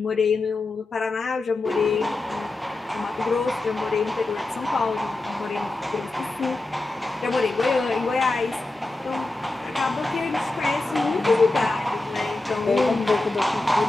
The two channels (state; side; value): quieter; right; 3.0 dB